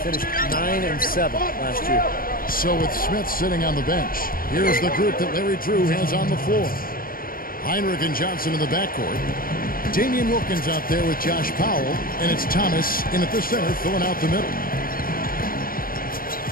9-7 last year. So with Smith sitting on the bench, here's the group that Larry Drew has on the floor. Heinrich and Johnson in the backcourt. Damian Wilkins out there with Josh Powell, and it's Thomas in at the center filling out the middle.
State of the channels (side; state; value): right; late; 0.42 ms